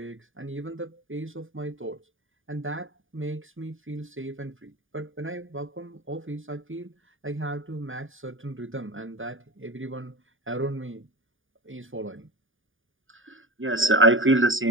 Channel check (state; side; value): late; left; 0.58 ms